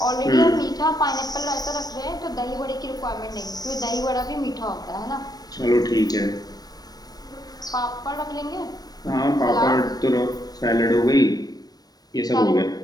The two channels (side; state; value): right; late; 0.19 ms